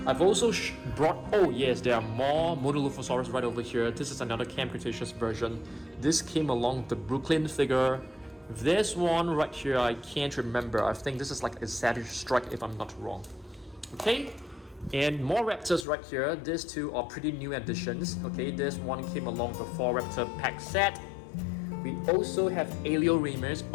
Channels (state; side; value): drops out; right; at 15.9 s